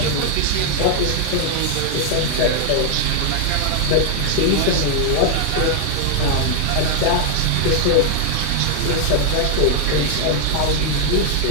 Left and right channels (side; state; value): both; different; correlation 0.00